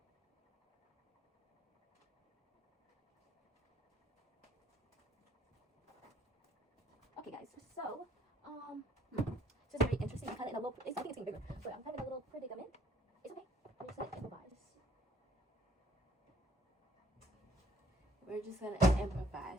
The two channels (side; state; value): both; normal; correlation 0.62